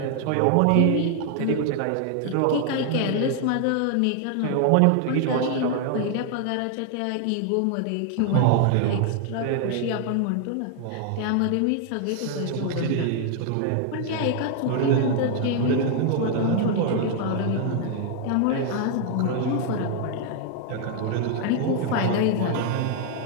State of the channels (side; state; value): both; different; correlation 0.00